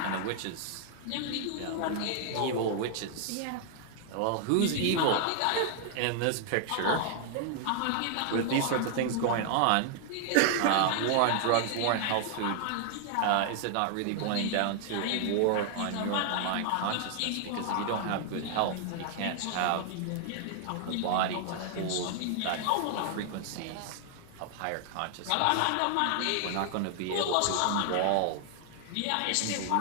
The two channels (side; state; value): both; different; correlation 0.00